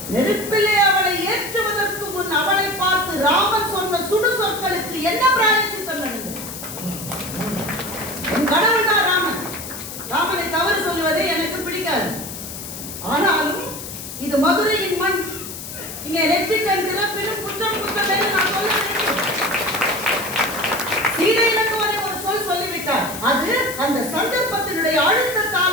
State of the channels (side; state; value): left; noise; hiss, 10 dB below the sound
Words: நெருப்பிலே அவளை ஏற்றுவதற்கு முன் அவளை பார்த்து ராமன் சொன்ன சுடு சொற்களுக்கு என்ன பிராயச்சித்தம் நடந்தது? என் கடவுள் தான் ராமன். ராமனை தவறு சொல்லுவதே எனக்கு பிடிக்காது. ஆனாலும் இது மதுரையின் மண், இங்கே நெற்றிக்கண் திறப்பிலும் குற்றம் குற்றமே நான் சொல்ல வேண்டும். சீதை இலக்குவனை ஒரு சொல் சொல்லிவிட்டார். அது அந்த சந்தர்ப்பத்தினுடைய